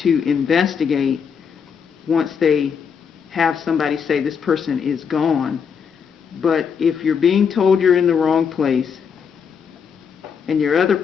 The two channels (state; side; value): quieter; right; 6.7 dB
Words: investigate once they have somebody say this person is gone. But if you're being told you're in the wrong place and your other